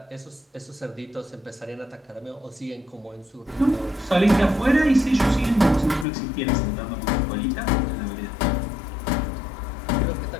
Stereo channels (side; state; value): right; drops out; at 6.1 s